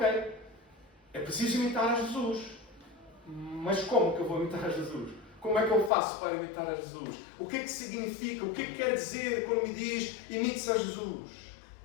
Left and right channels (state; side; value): drops out; right; at 5.9 s